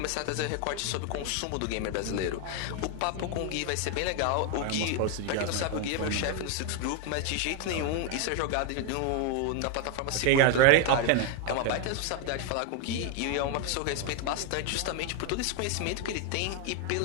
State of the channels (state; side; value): different; both; correlation 0.00